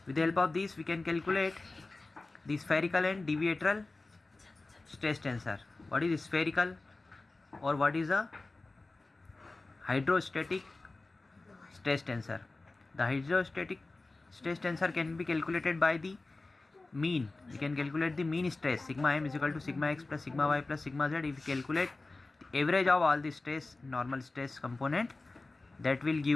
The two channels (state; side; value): quieter; right; 3.3 dB